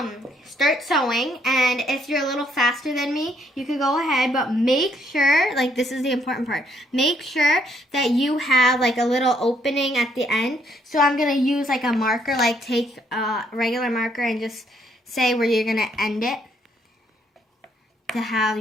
start sewing, and if you're a little faster than me, you can go ahead, but make sure, like this is the important part, make sure that you have like a little opening at the end. So I'm gonna use like a marker, like take a regular marker and just say where you're gonna end it to have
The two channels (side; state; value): both; normal; correlation 0.70